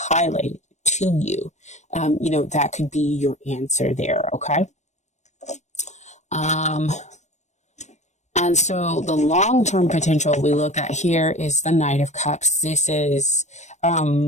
highlighted to you. That could be your answer there. Okay. And so the long-term potential we look at here is the Knight of Cups. This is,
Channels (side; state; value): right; late; 0.34 ms